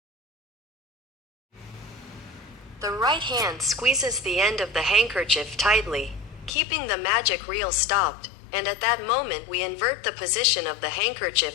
The right hand squeezes the end of the handkerchief tightly, keeping the magic reel stopped, and at that moment we invert the position of the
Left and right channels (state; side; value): drops out; right; at 6.5 s